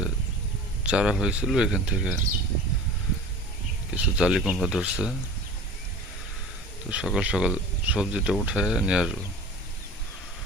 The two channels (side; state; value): both; normal; correlation 0.39